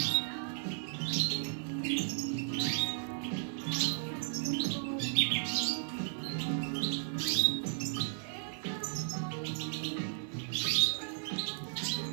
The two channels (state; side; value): silent; left; digital silence